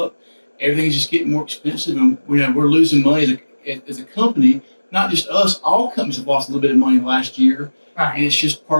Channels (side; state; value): both; inverted; correlation -1.00